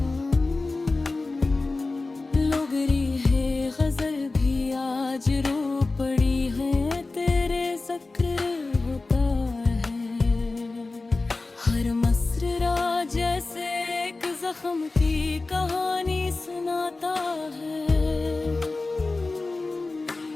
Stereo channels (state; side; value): quieter; right; 3.5 dB